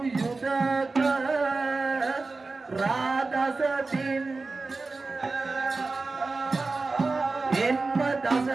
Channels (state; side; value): quieter; left; 3.7 dB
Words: yudaka radasatin enma